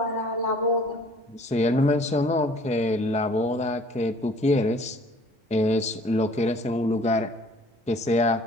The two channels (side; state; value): both; normal; correlation 0.54